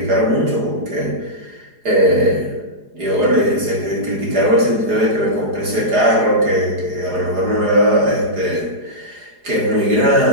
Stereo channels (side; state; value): left; late; 4.8 ms